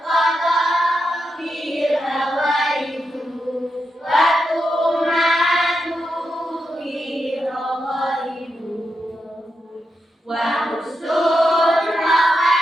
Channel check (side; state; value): both; normal; correlation 0.86